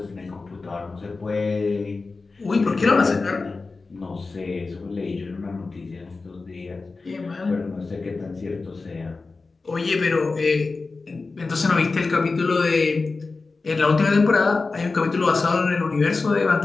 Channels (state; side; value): quieter; right; 3.9 dB